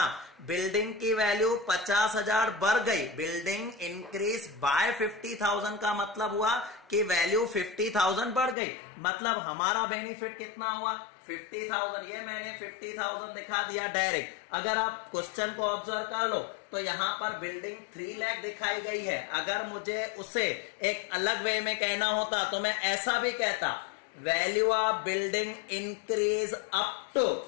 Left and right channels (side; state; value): right; drops out; at 8.6 s